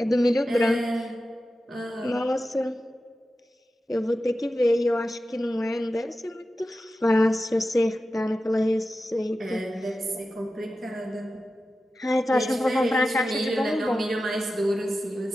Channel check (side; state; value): both; normal; correlation 0.93